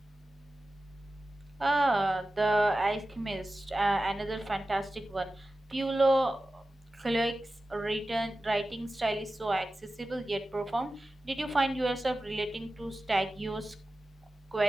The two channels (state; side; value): normal; both; correlation 0.94